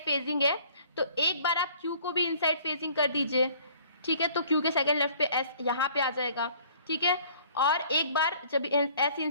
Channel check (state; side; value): inverted; both; correlation -0.55